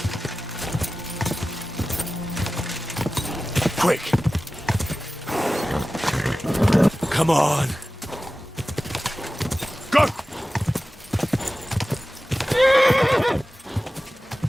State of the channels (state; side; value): normal; both; correlation 0.96